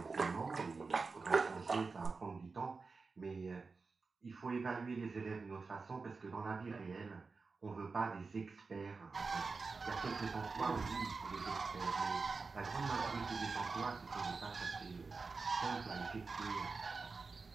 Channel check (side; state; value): left; quieter; 4.3 dB